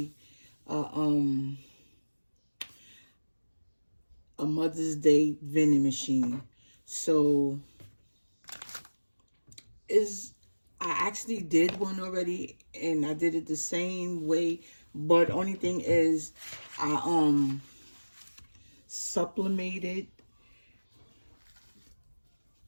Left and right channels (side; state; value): both; inverted; correlation -1.00